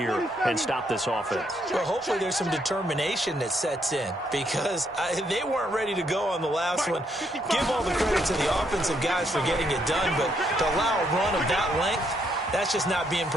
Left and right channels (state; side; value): normal; both; correlation 0.74